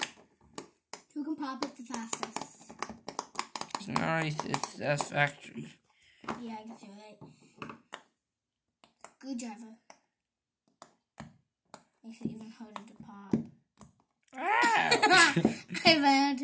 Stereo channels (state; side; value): identical; both; correlation 1.00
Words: Who can pop it the fastest? It's nice, it's satisfactory. Yeah, I guess you're right. Good driver. Makes it even harder to pop. I ran